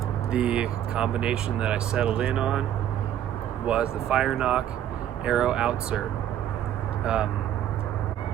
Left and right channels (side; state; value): left; quieter; 10.9 dB